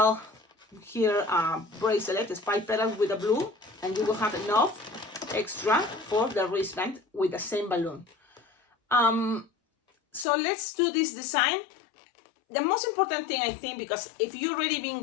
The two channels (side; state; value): right; drops out; at 10.2 s